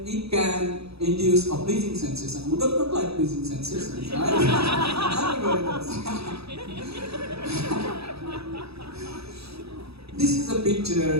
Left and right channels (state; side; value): late; left; 0.78 ms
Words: it can induce a pleasing sensation. Who does not like pleasing sensations, right? Everybody does. This is a